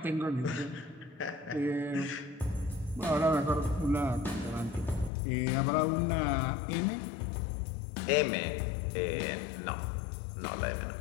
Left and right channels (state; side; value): drops out; right; at 5.1 s